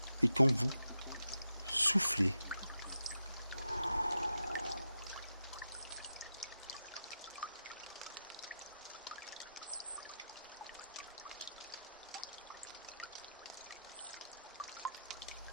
et quand vous soufflez.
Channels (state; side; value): inverted; both; correlation -0.87